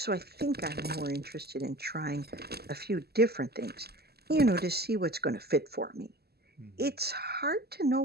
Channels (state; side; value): late; left; 0.46 ms